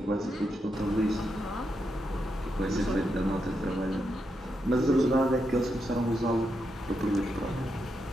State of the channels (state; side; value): normal; both; correlation 0.83